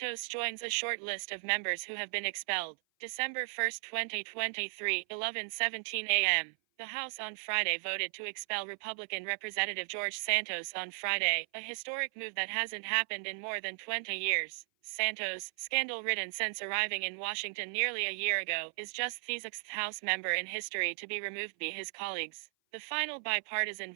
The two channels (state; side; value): silent; left; 54 dB below the other